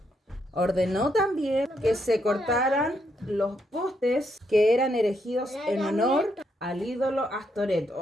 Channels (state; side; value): normal; both; correlation 0.77